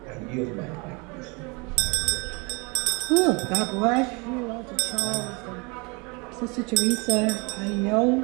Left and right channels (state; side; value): quieter; left; 29.4 dB